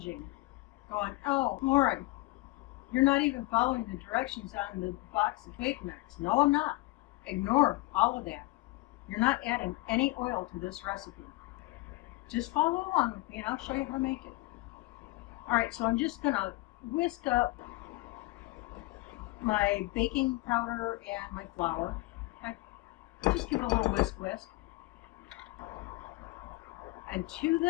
going, "Oh, Lauren, you're not even following the directions on the box of cake mix." No, I'm not. Ignore all of that. You're not adding any oil to this recipe. Just follow along with me and I'll show you how to make it. Alright, so I'm just going to whisk up my baking powder and my flour. Okay? Just give it a little whisk. And to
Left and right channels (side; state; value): right; quieter; 21.4 dB